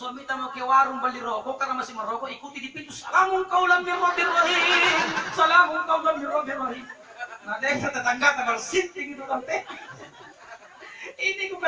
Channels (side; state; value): both; identical; correlation 1.00